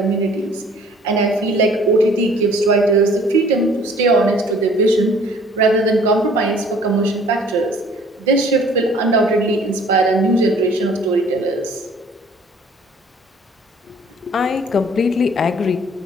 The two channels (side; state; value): both; normal; correlation 0.54